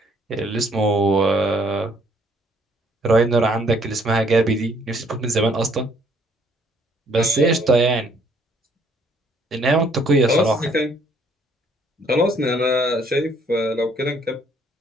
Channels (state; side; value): normal; both; correlation 0.64